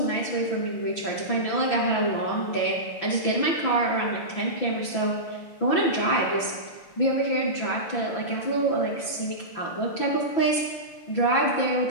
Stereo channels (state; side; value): late; right; 6.0 ms